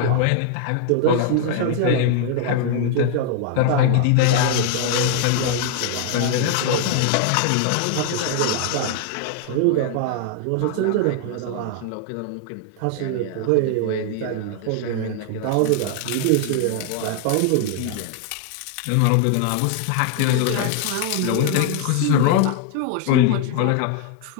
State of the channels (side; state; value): both; different; correlation 0.00